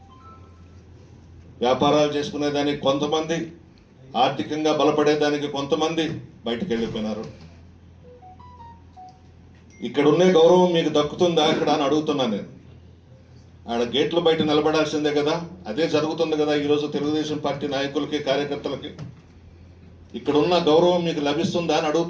వ్యాపారాలు చేసుకునేదానికి కొంతమంది, ఆర్థికంగా బలపడేదానికి కొంతమంది బయటకు వెళ్ళిపోయినారు. ఇక్కడ ఉండే గౌరవం మీకు దక్కుతుందా ఇక్కడ అని అడుగుతున్నా నేను. ఆడ గేట్ల బయట నిలబడాల్సిందే కదా. అదే జరుగుతుంది కదా ఈరోజు తెలుగుదేశం పార్టీ నాయకులకి, కార్యకర్తలకి. ఇక్కడ ఉన్న గౌరవం మీకు లభిస్తుందా అని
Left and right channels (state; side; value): identical; both; correlation 1.00